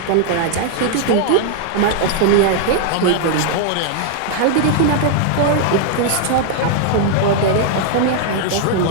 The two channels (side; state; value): both; different; correlation 0.00